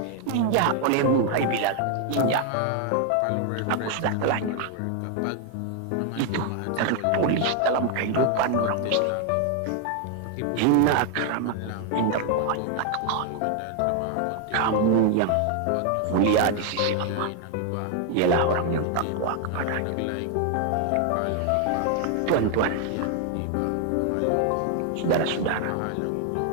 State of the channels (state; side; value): different; both; correlation 0.00